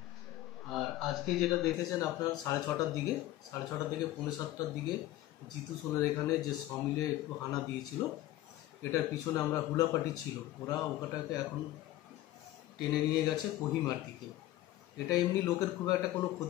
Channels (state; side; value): quieter; right; 15.3 dB